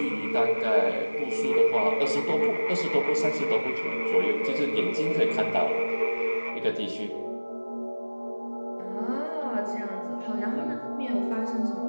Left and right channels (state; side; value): inverted; both; correlation -1.00